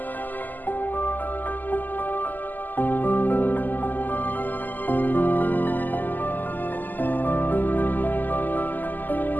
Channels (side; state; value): right; late; 0.086 ms